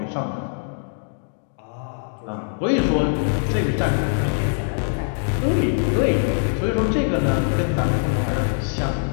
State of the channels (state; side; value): silent; right; digital silence